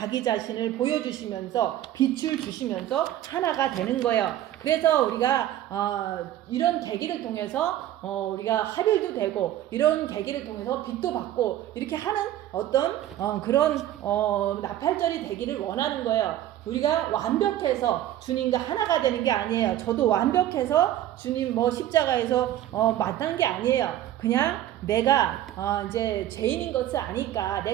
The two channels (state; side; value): quieter; left; 12.7 dB